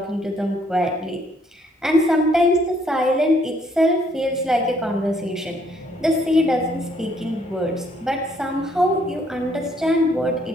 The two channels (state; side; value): normal; both; correlation 0.67